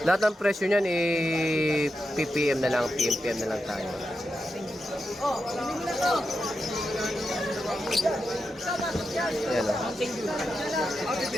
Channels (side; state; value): both; normal; correlation 0.88